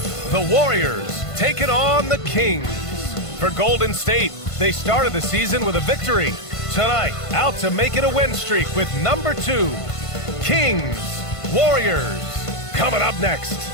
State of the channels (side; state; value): right; late; 1.5 ms